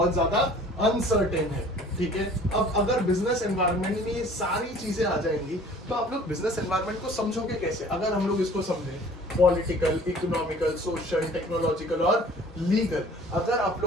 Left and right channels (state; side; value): normal; both; correlation 0.50